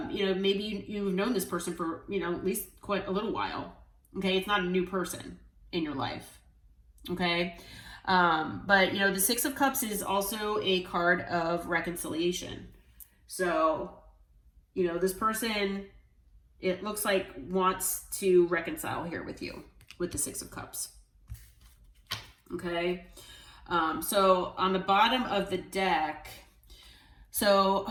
you know, maybe you've known this person for, you know, at least quite a little while. Okay. It's not a new person in your life. Okay. But you know, the Six of Cups is also a card of reconciliation. So, you know, this person, it looks like wants to reconcile here with you with the Six of Cups. Okay. So on the bottom of the deck, so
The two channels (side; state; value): both; identical; correlation 1.00